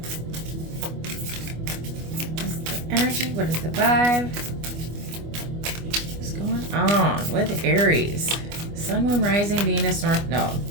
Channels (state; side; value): late; left; 25 ms